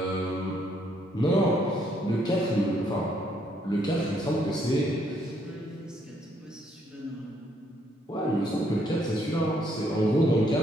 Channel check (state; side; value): normal; both; correlation 0.70